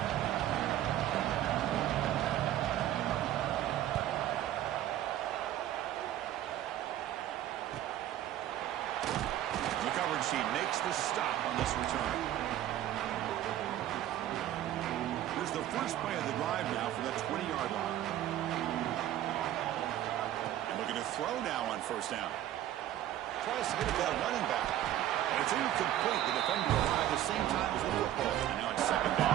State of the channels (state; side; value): quieter; left; 12.6 dB